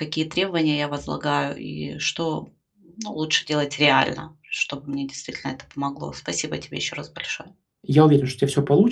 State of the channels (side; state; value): both; identical; correlation 1.00